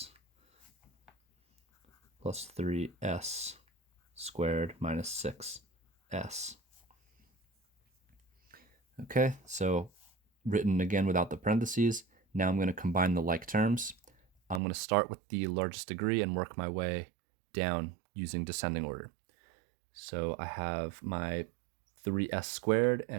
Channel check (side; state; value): left; drops out; at 14.6 s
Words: Plus 3S squared minus 6S. Okay, so written again without the parentheses. Now I'm going to combine the like terms. I'm going to start with the largest degree and work my way down using descending order. So I have my 3s squared